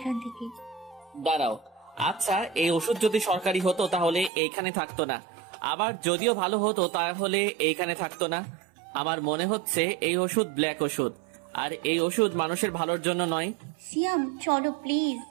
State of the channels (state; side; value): drops out; left; at 4.3 s